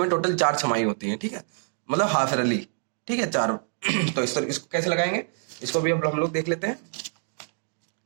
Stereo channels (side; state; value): left; silent; digital silence